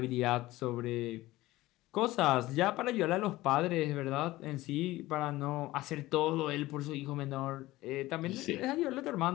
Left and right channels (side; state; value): right; quieter; 17.8 dB